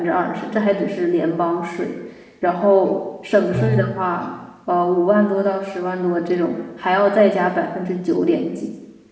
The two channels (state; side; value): identical; both; correlation 1.00